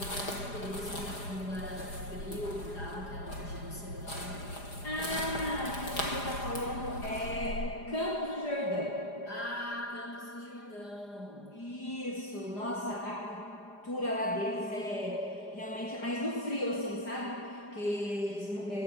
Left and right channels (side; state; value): right; late; 4.9 ms